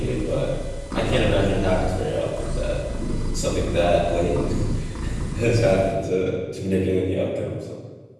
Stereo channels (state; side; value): identical; both; correlation 1.00